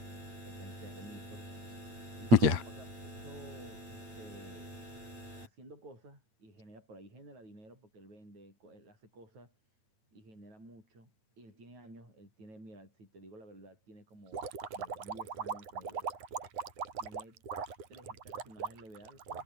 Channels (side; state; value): left; late; 8.8 ms